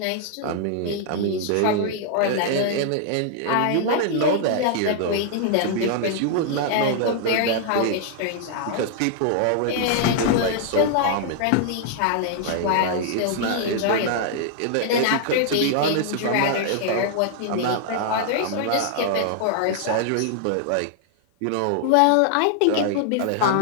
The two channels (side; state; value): both; different; correlation -0.01